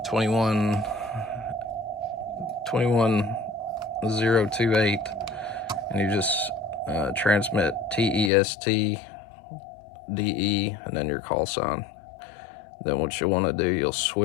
21028, and you just transmit TEST DE and then your call sign. Then what you want to do, you'll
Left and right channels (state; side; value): drops out; right; at 8.3 s